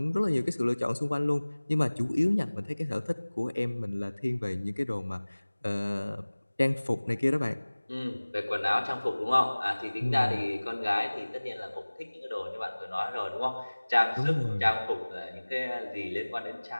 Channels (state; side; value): inverted; both; correlation -1.00